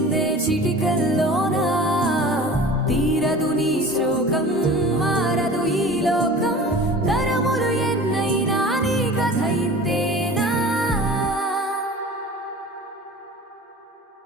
చిటికల్లోనా, తీరదు నీ శోకం, మారదు ఈ లోకం, తరములు ఎన్నైనా నీ కథ ఇంతేనా.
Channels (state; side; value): normal; both; correlation 0.40